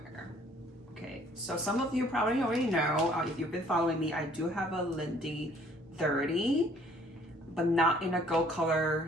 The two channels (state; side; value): normal; both; correlation 0.59